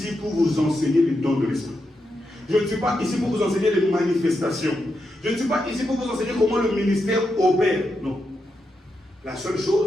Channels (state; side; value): normal; both; correlation 0.85